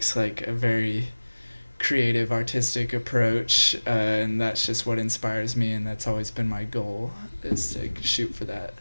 like a very creative, artistic approach, and that's just what inspires me, and that's always been my goal, is to shoot for that.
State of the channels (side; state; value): both; inverted; correlation -1.00